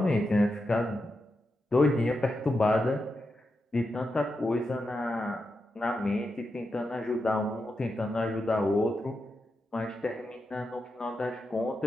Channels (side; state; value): both; normal; correlation 0.87